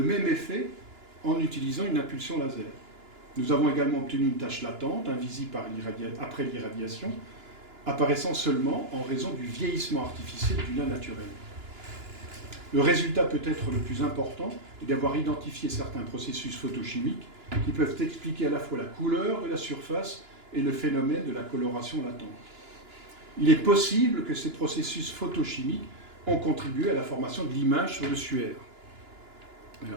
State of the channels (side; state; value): left; late; 2.9 ms